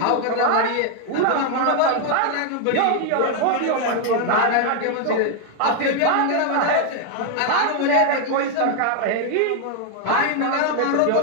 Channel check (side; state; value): both; different; correlation 0.00